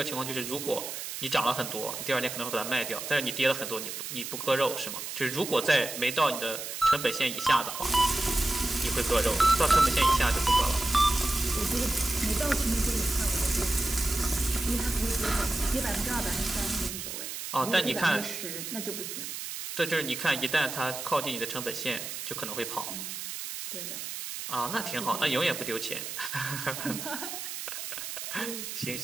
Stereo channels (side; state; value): right; noise; hiss, 7 dB below the sound